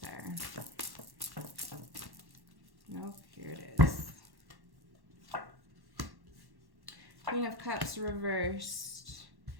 there. Nope, here it is. Queen of Cups reversed.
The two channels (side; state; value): left; late; 1.1 ms